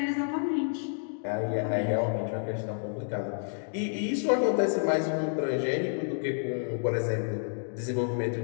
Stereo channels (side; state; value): right; silent; digital silence